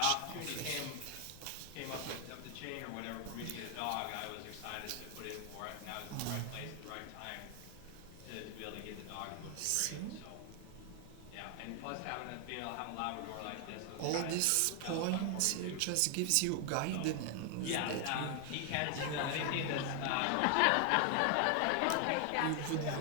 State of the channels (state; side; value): different; both; correlation 0.00